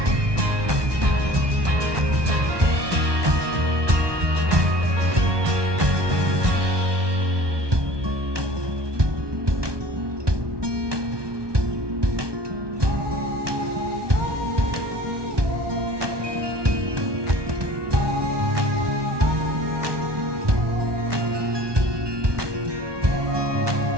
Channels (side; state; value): left; late; 1.2 ms